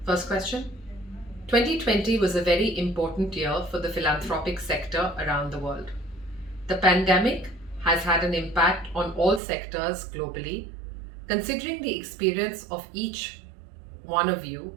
First question. 2020 was a very important year for the philanthropic sector around the world. The pandemic has had an impact on all sectors globally. Considering the experience of each one of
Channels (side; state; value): left; drops out; at 9.4 s